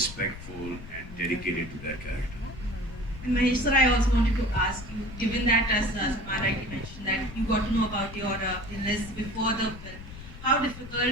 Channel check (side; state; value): left; noise; rumble, 14 dB below the sound